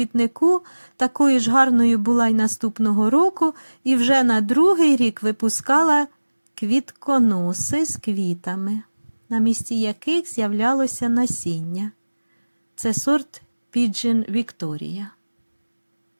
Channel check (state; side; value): inverted; both; correlation -1.00